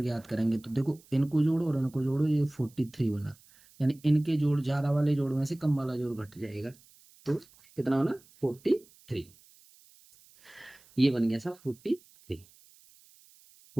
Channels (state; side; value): noise; right; hiss, 27 dB below the sound